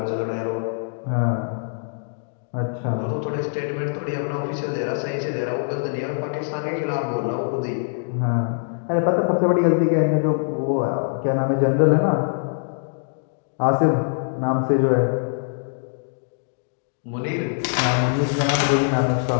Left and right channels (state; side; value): silent; right; digital silence